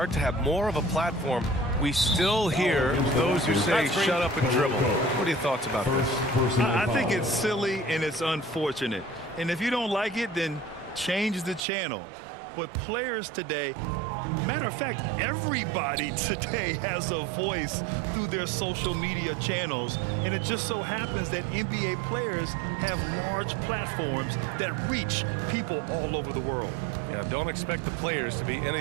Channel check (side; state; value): left; drops out; at 11.6 s